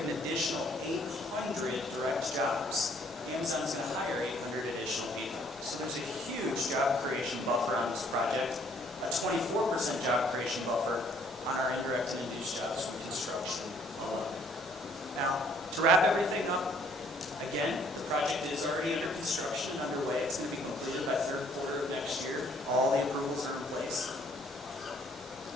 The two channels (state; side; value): normal; both; correlation 0.62